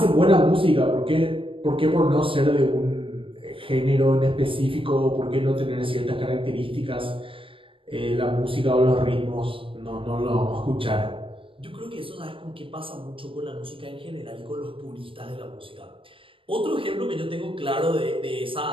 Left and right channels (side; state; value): left; late; 0.25 ms